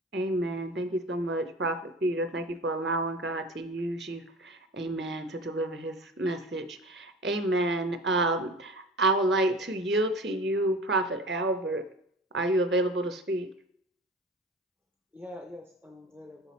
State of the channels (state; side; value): normal; both; correlation 0.38